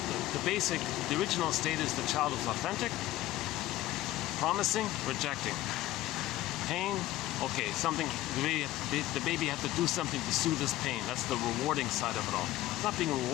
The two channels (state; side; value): quieter; right; 15.7 dB